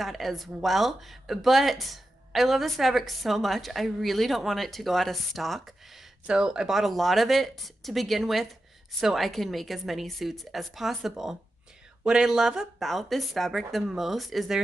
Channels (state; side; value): normal; both; correlation 0.91